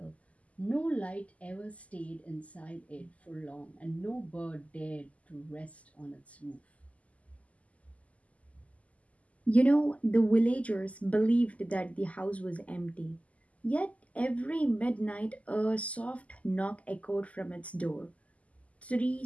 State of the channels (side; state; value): right; late; 0.069 ms